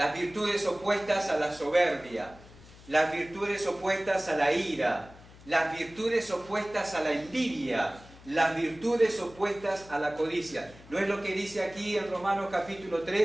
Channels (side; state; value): left; noise; hum, 21 dB below the sound